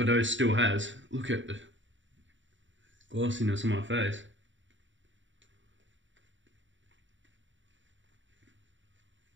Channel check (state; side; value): late; left; 0.55 ms